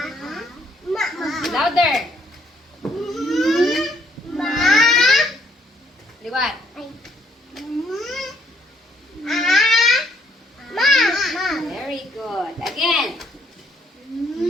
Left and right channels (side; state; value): both; normal; correlation 0.68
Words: Louder. Liwat. Very good. Again.